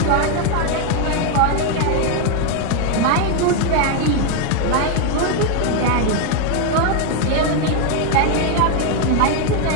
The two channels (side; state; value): both; different; correlation 0.01